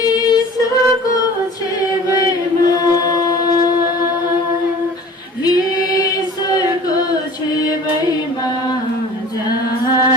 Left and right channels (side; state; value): both; normal; correlation 0.44